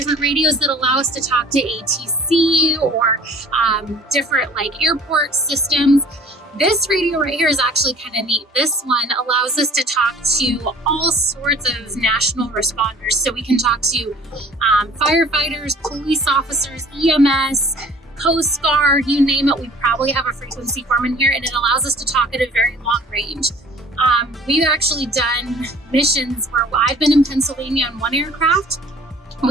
radios that allow us to talk to ATC or different like airport systems. This radio right here is actually kind of neat. This one allows us to talk to all sorts of national responders. So we can talk to firefighters, police officers, EMS, Coast Guard, you name it. We probably have a frequency form in here, and it allows us to talk at a very long range. We've actually done missions where I've been in Pennsylvania on one aircraft.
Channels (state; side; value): normal; both; correlation 0.47